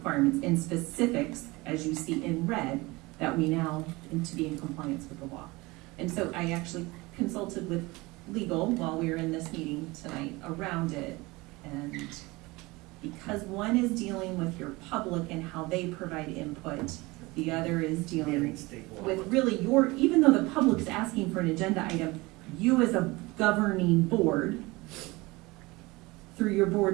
and specifics, as you see in red, that we now need to be in compliance with the law. And so I actually consulted with legal while we were in this meeting tonight around it, and because one is dealing with your public and how they provide input, the other is dealing with really your, even though the public's asking for an agenda item, you as a governing board, through your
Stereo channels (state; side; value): quieter; left; 22.8 dB